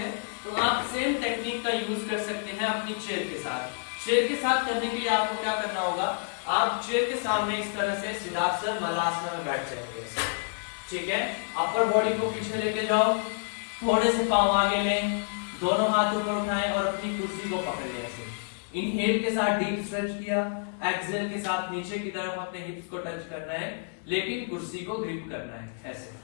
तो आप सेम टेक्निक का यूज कर सकते हैं अपनी चेयर के साथ। चेयर के साथ करने के लिए आपको क्या करना होगा, आप चेयर के सामने इस तरह से सिद्धासन मलासना में बैठ जाएंगे, ठीक है। अपर बॉडी को पीछे लेके जाओ, थोड़े से पांव आगे लें, दोनों हाथ ऊपर उठाएं और अपनी कुर्सी को पकड़ लें ऐसे। इनहेल के साथ डीप स्ट्रेच किया, एक्सहेल के साथ नीचे की तरफ अपने हिप्स को टच करना है, लेकिन कुर्सी को ग्रिप करना है ऐसे।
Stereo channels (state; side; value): silent; right; digital silence